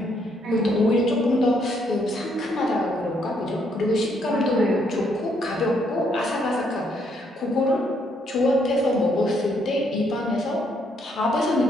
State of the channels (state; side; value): normal; both; correlation 0.72